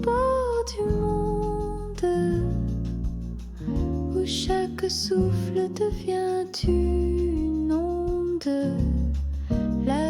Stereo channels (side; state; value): both; identical; correlation 1.00